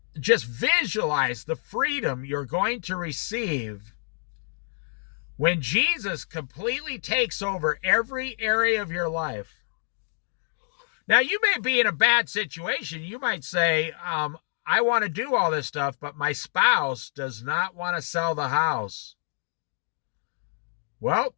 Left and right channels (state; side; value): silent; right; digital silence